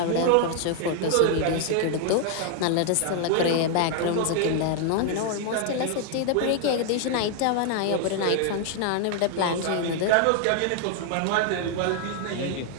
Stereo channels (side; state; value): both; different; correlation 0.00